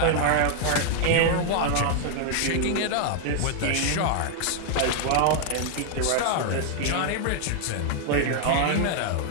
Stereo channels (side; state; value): both; different; correlation 0.00